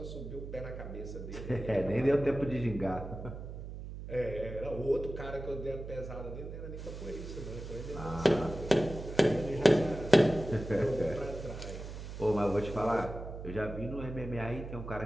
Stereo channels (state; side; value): noise; right; hum, 9 dB below the sound